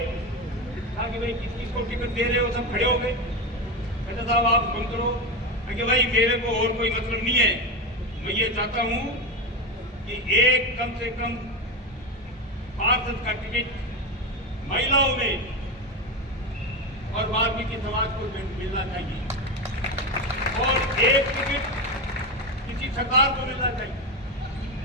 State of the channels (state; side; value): normal; both; correlation 0.16